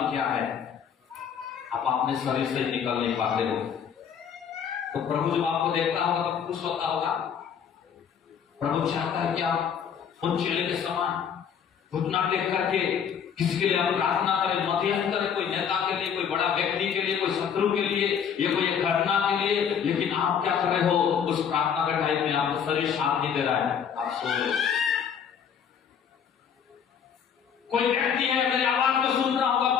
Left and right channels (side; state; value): right; quieter; 7.7 dB